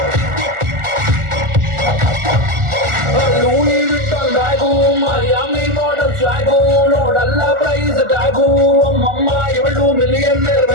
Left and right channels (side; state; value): left; late; 1.4 ms